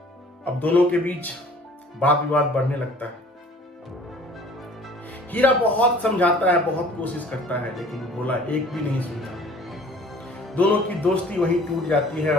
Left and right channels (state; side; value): normal; both; correlation 0.51